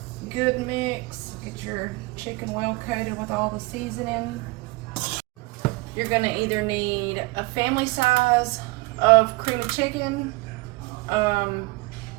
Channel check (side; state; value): left; quieter; 23.8 dB